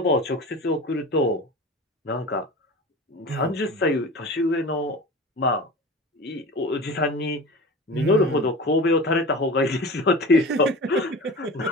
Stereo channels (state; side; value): normal; both; correlation 0.34